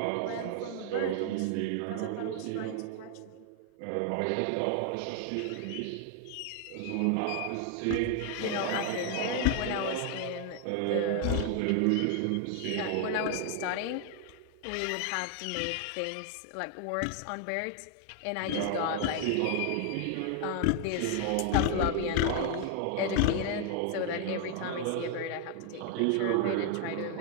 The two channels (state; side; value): different; both; correlation 0.00